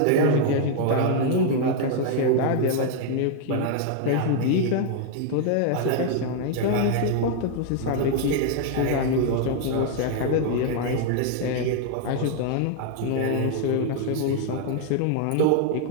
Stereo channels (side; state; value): both; different; correlation 0.00